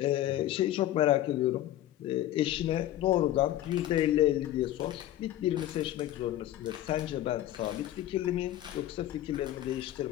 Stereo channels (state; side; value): quieter; right; 13.5 dB